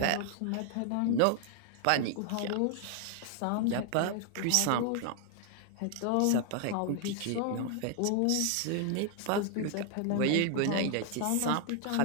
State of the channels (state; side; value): different; both; correlation 0.00